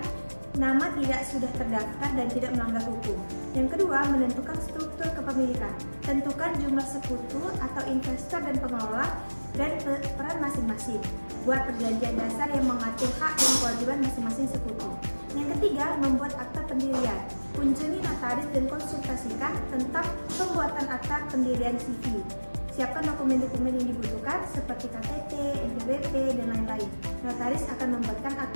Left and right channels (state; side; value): inverted; both; correlation -1.00